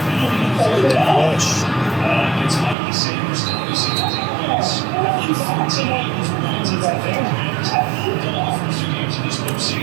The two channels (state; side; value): drops out; left; at 2.8 s